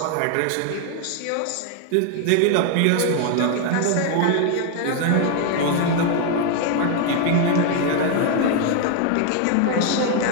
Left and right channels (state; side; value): different; both; correlation 0.00